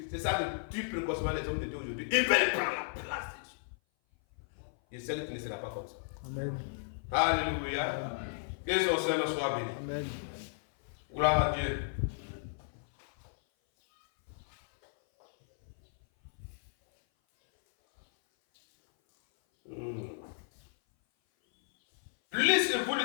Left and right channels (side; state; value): right; silent; 55 dB below the other